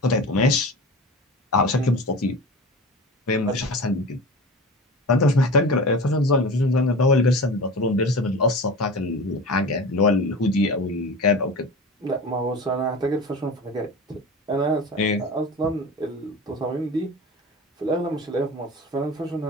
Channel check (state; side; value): normal; both; correlation 0.33